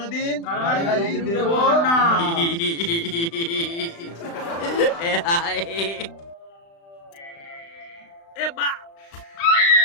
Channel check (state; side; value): late; right; 35 ms